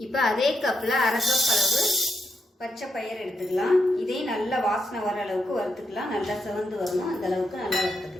இப்போ அதே கப்பில் 1/2 கப் அளவு பச்சை பயிர் எடுத்துக்கலாம். இதையும் நல்லா வாசனை வர அளவுக்கு வறுத்துக்கலாம். நல்லா சிவந்து வரணும். அந்த அளவுக்கு நல்லா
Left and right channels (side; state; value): both; normal; correlation 0.82